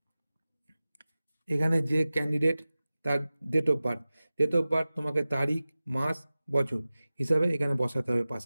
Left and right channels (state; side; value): inverted; both; correlation -0.97